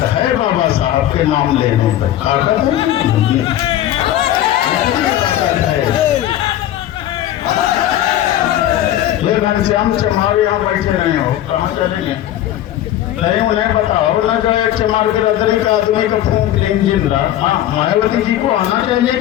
है बाबा साहब के नाम लेने पर, ताकत है। ये घनश्याम चमार यहाँ बैठे रहे हो, कहाँ चलेंगे? नहीं उन्हें बताओ ना, जाए चमार के रदरी का आदमी का फूंक लेंगे जिंदा। हाँ, मायावती जी को आना चाहिए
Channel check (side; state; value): right; quieter; 12.6 dB